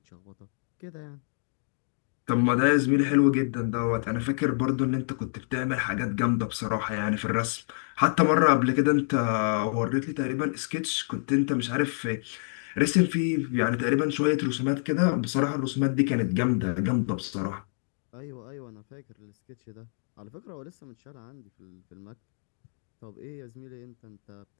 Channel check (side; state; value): right; silent; digital silence